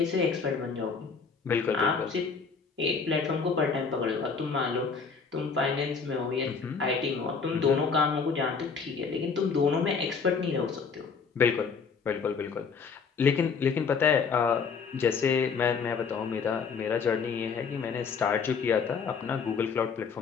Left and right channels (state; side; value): quieter; right; 5.5 dB